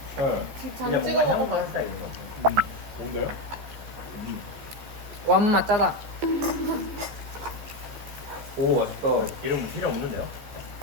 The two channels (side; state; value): left; late; 14 ms